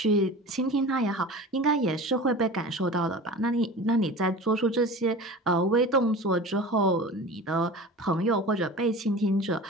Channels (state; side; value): normal; both; correlation 0.35